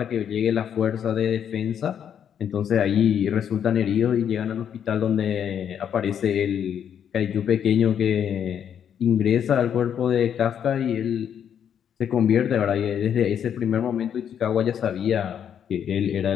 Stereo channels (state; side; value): quieter; right; 8.7 dB